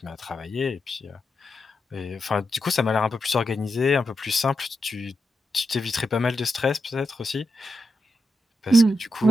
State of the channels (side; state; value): both; normal; correlation 0.86